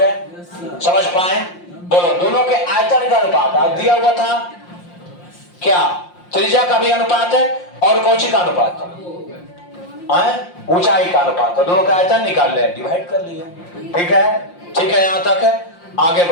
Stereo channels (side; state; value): right; late; 5.7 ms